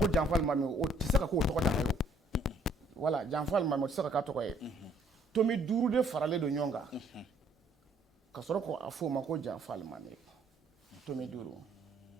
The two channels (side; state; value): both; normal; correlation 0.64